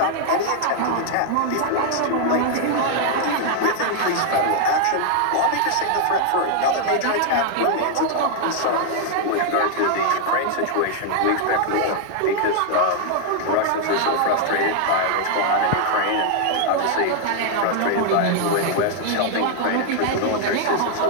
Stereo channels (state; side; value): different; both; correlation 0.00